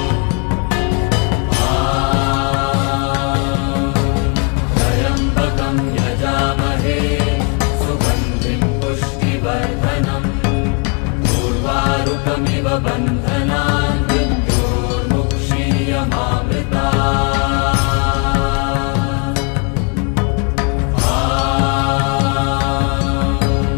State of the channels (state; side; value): quieter; right; 36.0 dB